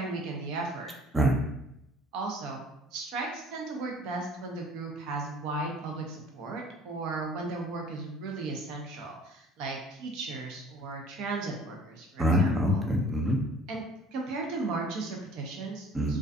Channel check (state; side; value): normal; both; correlation 0.51